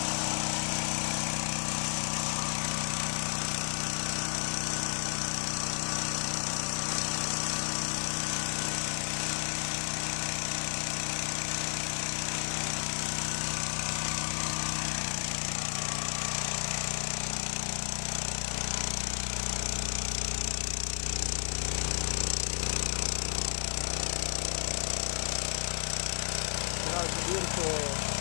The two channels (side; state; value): right; silent; digital silence